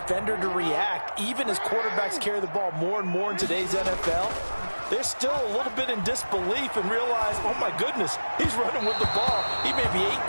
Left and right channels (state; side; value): inverted; both; correlation -1.00